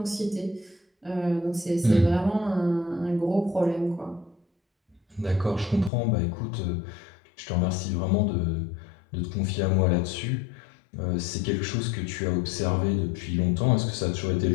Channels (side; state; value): right; drops out; at 5.9 s